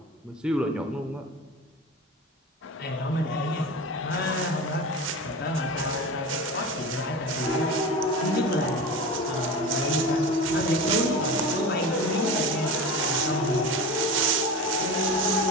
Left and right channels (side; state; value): both; normal; correlation 0.29